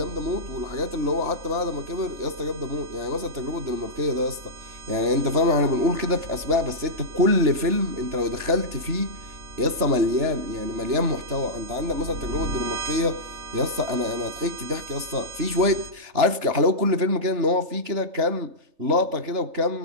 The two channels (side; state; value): left; late; 3.3 ms